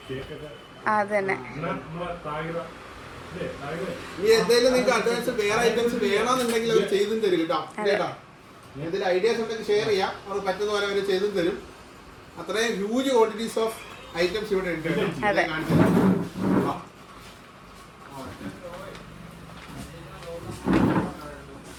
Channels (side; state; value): both; identical; correlation 1.00